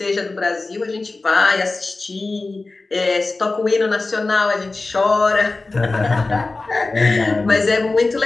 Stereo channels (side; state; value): right; quieter; 3.4 dB